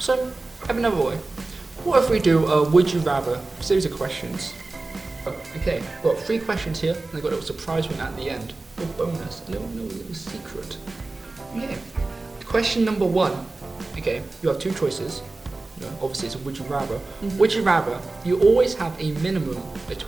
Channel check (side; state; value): left; quieter; 3.3 dB